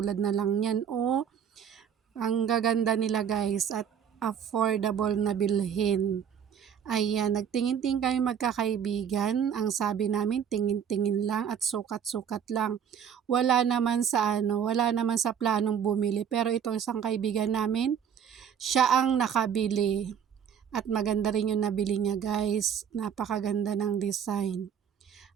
na lang yan. Ang gaganda nila guys at affordable na bilhin. Ayan, nagtingin-tingin kami magkakaibigan. Ang sabi namin, tingin-tingin lang at sukat-sukat lang. Wala naman sa planong bumili. Pero itong isang kaibigan namin, siya ang nakabili. At maganda rin yung nabili niya guys. Napakaganda ng design.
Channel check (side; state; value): left; quieter; 8.2 dB